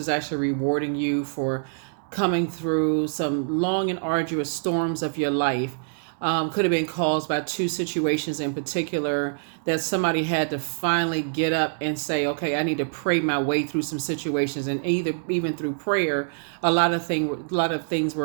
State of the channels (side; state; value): left; silent; digital silence